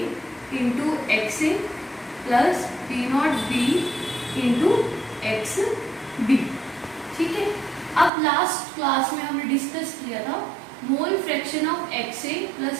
into x A plus P not B into x B, ठीक है। अब लास्ट क्लास में हमने discuss किया था mole fraction of x A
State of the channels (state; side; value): drops out; left; at 8.1 s